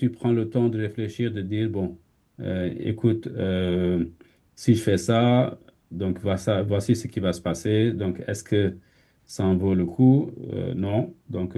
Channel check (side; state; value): both; identical; correlation 1.00